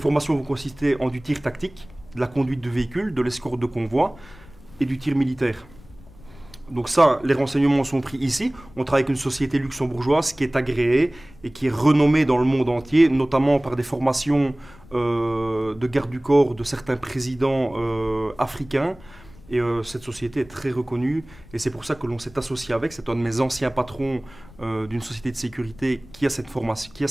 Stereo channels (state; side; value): noise; left; rumble, 22 dB below the sound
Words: vont consister en du tir tactique, de la conduite de véhicules, de l'escorte de convoi et du tir militaire. Donc ça, les renseignements sont pris ici. On travaille avec une société luxembourgeoise qui est agréée et qui est renommée dans le monde entier, notamment par des formations de garde du corps de certains présidents africains. Et cette société est très reconnue et c'est pour ça que l'on s'est associé avec. C'est un de mes anciens patrons d'une société de sécurité qui a cette formation, qui a